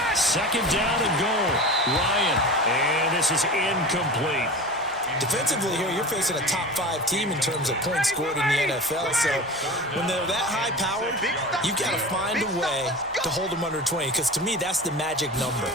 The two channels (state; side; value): noise; right; hum, 26 dB below the sound